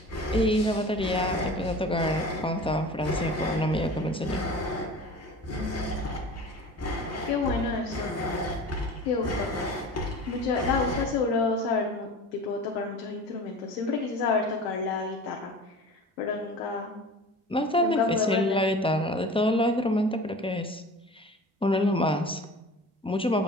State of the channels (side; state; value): both; normal; correlation 0.38